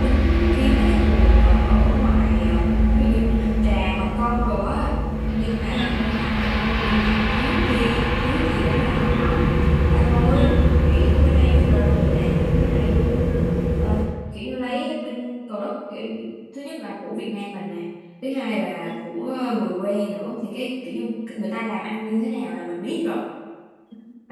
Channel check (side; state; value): both; identical; correlation 1.00